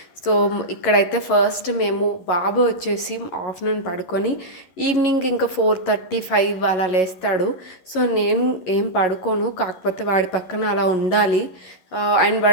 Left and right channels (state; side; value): late; right; 11 ms